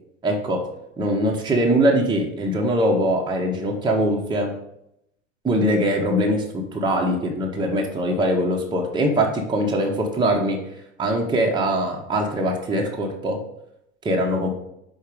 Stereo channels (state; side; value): normal; both; correlation 0.37